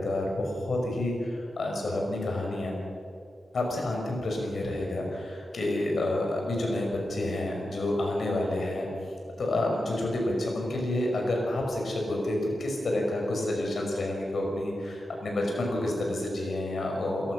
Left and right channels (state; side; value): normal; both; correlation 0.89